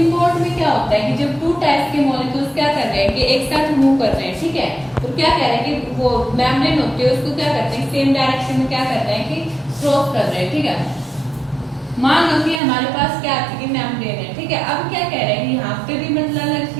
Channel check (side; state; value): left; drops out; at 12.6 s